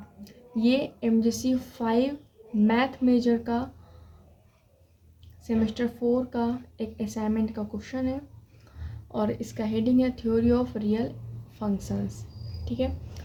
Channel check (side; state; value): both; identical; correlation 1.00